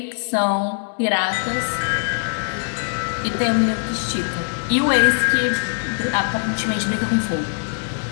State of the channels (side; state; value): right; silent; digital silence